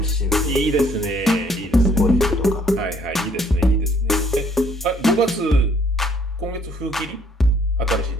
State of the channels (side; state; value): both; normal; correlation 0.63